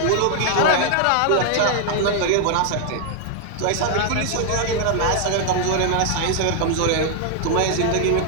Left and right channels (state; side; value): different; both; correlation 0.00